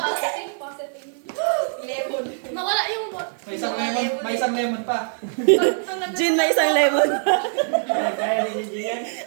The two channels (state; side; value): silent; left; digital silence